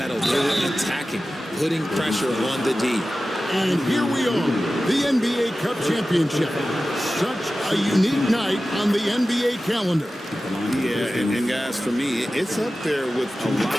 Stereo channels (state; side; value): normal; both; correlation 0.95